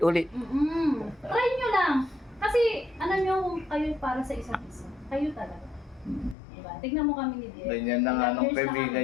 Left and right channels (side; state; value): right; drops out; at 6.4 s